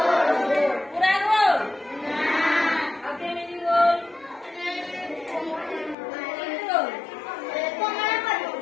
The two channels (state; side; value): drops out; right; at 6.0 s